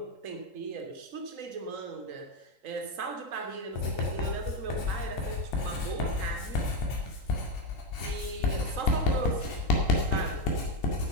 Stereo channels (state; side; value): late; left; 3.8 ms